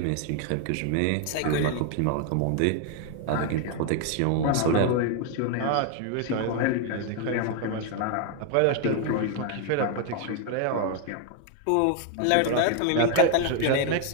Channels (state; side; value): different; both; correlation 0.01